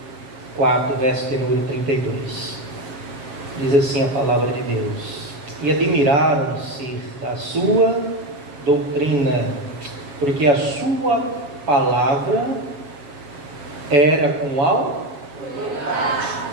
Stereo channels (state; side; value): late; left; 7.4 ms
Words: 4, verso de número 32. Diz assim a palavra de Deus: e admiraram-se da sua doutrina, porque a sua palavra era com autoridade.